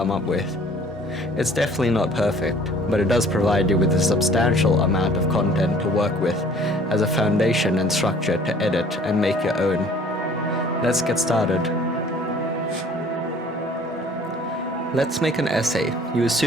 up with. It's definitely not perfect, but it does provide you with a substantial amount of content to work with as a foundation and structure to edit and make your own. Let's get started. Let's make an essay. You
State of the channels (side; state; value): both; normal; correlation 0.53